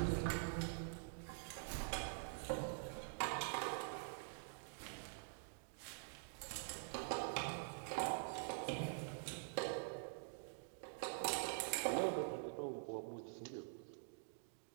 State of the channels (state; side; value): silent; left; digital silence